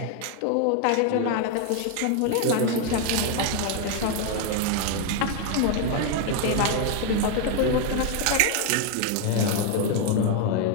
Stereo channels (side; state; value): both; different; correlation 0.01